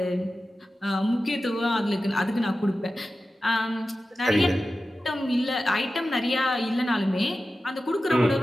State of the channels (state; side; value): normal; both; correlation 0.94